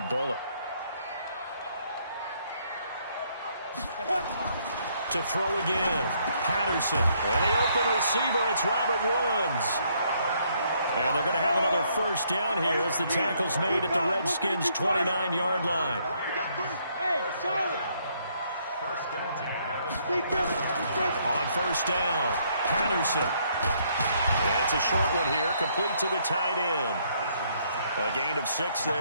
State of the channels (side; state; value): both; inverted; correlation -0.69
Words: bullet. To throw again. Patterson. And the open receiver, it's Robert Woods. And they're going to have another 1st down here as the tackle's made at the Redskins' 29-yard line. Hey, solid. On 1st down, Patterson. It's a short one here, complete to the tight end. A gain of 6